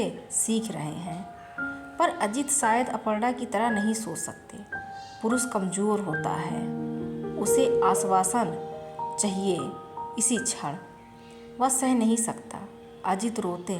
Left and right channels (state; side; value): identical; both; correlation 1.00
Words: सीख रहे हैं। पर अजीत शायद अपर्णा की तरह नहीं सोच सकते। पुरुष कमज़ोर होता है, उसे आश्वासन चाहिए इसी क्षण। वह सह नहीं सकता। अजीत रोते